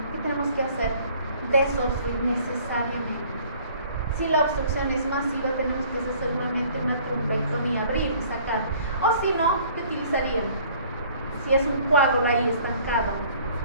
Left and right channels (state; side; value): inverted; both; correlation -0.55